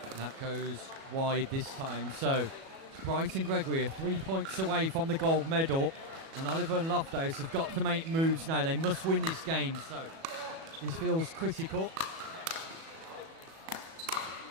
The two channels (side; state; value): left; late; 37 ms